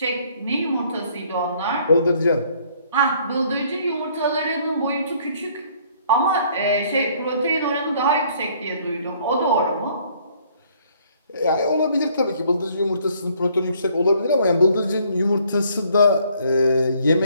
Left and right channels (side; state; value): both; inverted; correlation -0.62